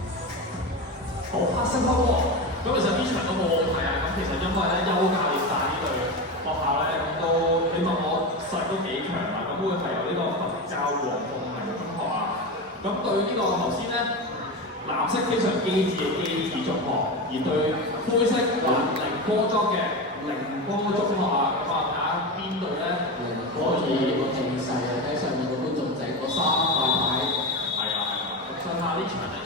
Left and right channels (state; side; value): normal; both; correlation 0.21